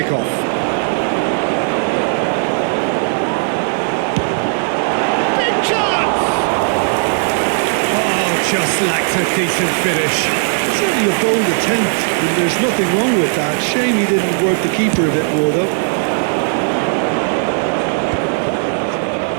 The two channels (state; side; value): silent; left; digital silence